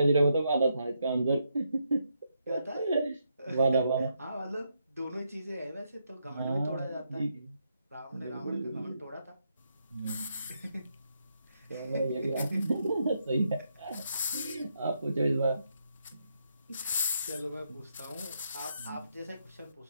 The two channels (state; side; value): inverted; both; correlation -0.79